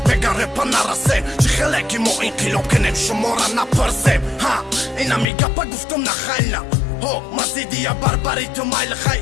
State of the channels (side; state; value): right; drops out; at 5.2 s